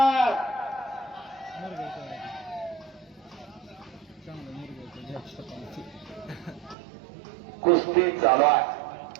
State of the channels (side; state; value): left; drops out; at 6.8 s